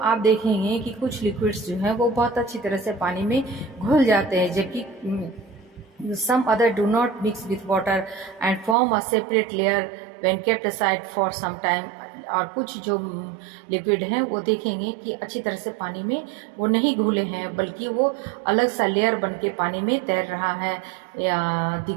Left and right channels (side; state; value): left; drops out; at 8.8 s